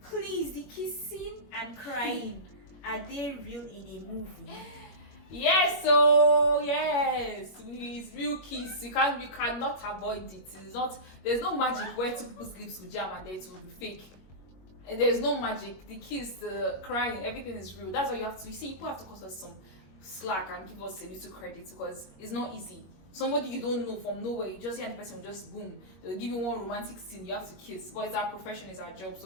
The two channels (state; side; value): late; right; 21 ms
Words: the kissing and crying, are they real in a movie? Yes, so yes, it's real kiss. You cannot avoid it. It's not. There's no magic where two people's lips will jam and then it will be fake. And there's no magic. The kiss, the crying, everything is real. That's why you have to. You see, people have to cut us some slack and give us a little credit because it's not easy. Somebody you don't know from nowhere, you just hear the person will just boom. They'll give you one romantic scene. You have to kiss. But it's our profession, it's our job.